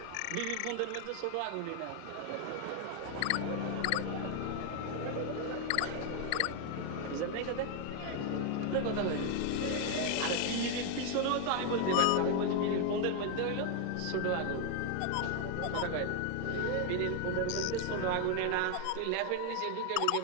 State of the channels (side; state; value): both; different; correlation 0.00